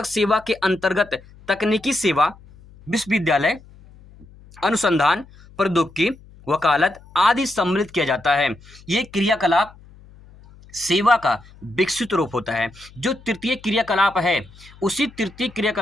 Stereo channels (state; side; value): noise; left; hum, 23 dB below the sound